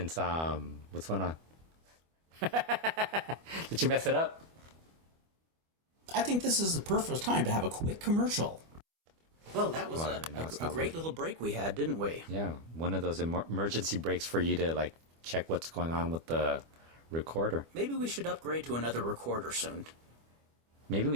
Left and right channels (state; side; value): late; left; 25 ms